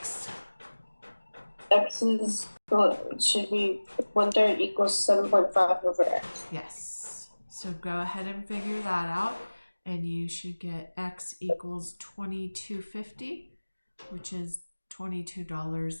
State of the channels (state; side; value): inverted; both; correlation -1.00